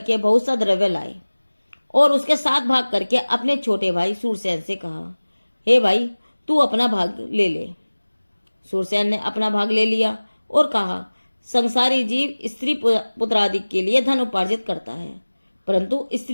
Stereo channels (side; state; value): both; inverted; correlation -1.00